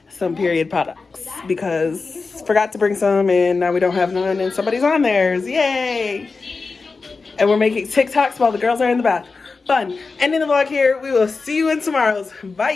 some period products because forgot to bring some and now we don't have none and somebody's on theirs. Yay! And we're making TikToks while the girls are in the bath. Fun. Ending the vlog here. We will see you in tomorrow's.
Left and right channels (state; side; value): quieter; right; 4.3 dB